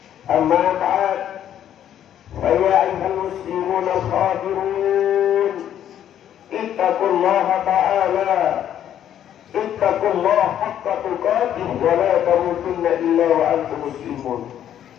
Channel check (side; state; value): right; quieter; 10.5 dB